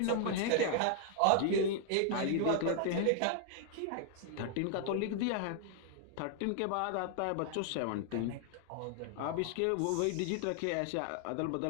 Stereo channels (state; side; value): different; both; correlation 0.00